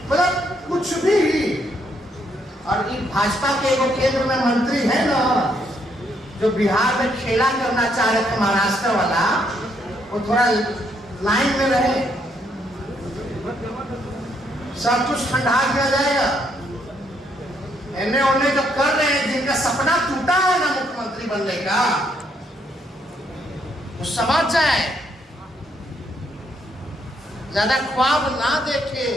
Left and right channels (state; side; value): normal; both; correlation 0.73